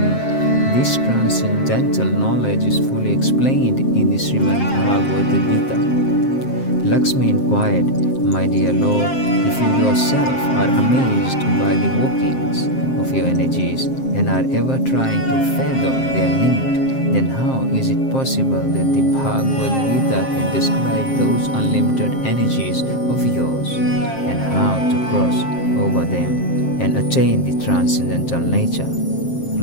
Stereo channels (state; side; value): late; right; 7.6 ms